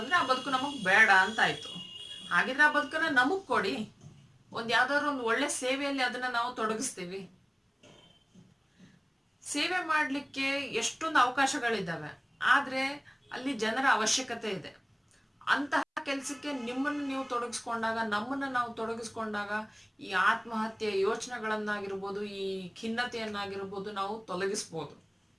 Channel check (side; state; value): both; identical; correlation 1.00